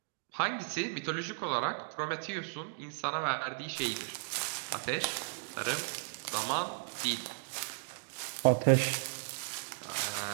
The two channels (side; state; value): left; silent; digital silence